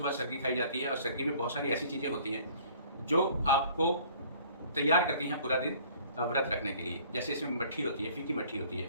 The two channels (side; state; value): both; inverted; correlation -0.53